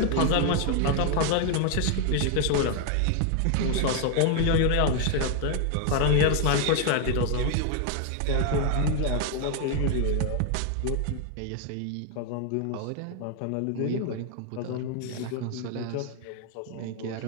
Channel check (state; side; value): different; both; correlation 0.00